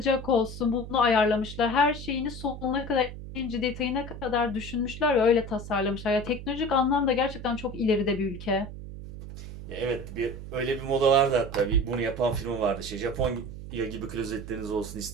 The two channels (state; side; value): noise; right; hum, 11 dB below the sound